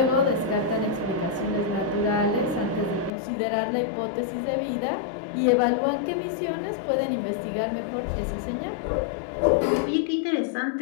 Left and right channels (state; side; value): drops out; right; at 3.1 s